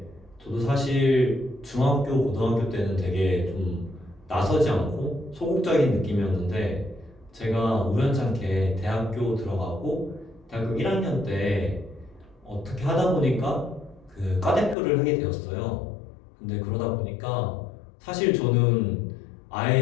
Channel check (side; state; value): right; drops out; at 14.8 s